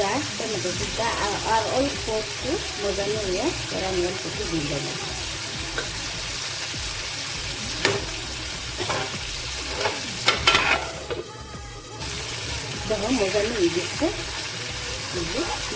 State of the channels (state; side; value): identical; both; correlation 1.00